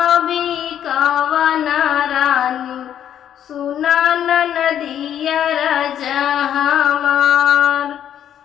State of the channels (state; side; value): quieter; right; 10.0 dB